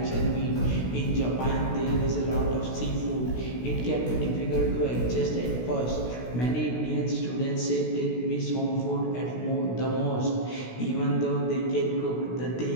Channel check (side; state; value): right; late; 16 ms